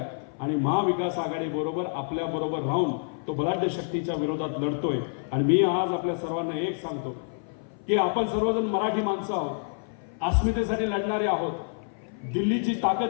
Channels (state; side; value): silent; right; 56 dB below the other